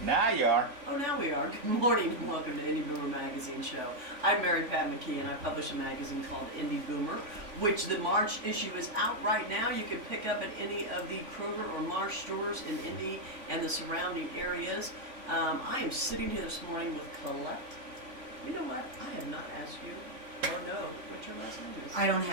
Now you are. Oh, now we are. Good morning and welcome to Indie Boomer Magazine Show. I'm Mary Pat McKee and I publish a magazine called Indie Boomer, which the March issue is out right now. You can pick up at any of the Kroger or Marsh stores in Indy and the surrounding areas. I am sitting here this morning with Colette. You know what? I have not asked you or know what your last name is. I don't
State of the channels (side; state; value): left; late; 3.5 ms